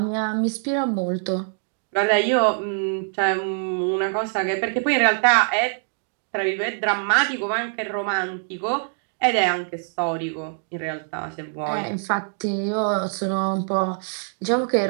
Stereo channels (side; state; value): left; silent; 63 dB below the other